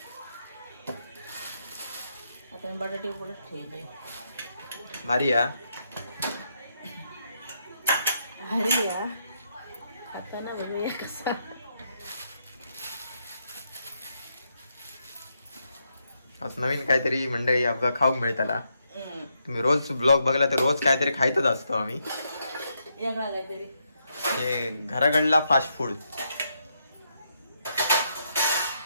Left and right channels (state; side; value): inverted; both; correlation -0.79